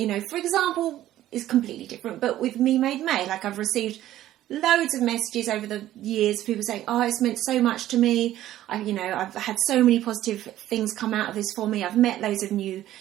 know, for example, it's completely different, but with Me Made May, like I've received loads of messages over the years, people saying, oh, it's meant so much to me. I've had so many positive things come out of this for me. I've met loads of new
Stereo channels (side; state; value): left; quieter; 13.5 dB